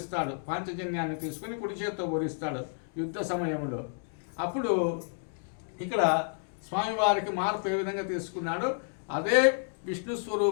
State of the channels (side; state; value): right; silent; digital silence